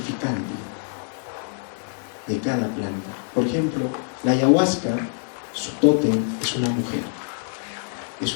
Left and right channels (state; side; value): silent; right; 61 dB below the other